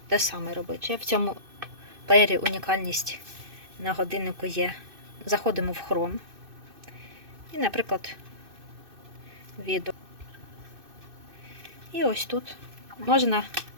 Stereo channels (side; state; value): left; late; 2.6 ms